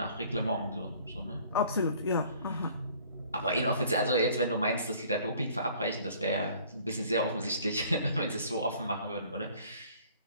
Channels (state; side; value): inverted; both; correlation -0.55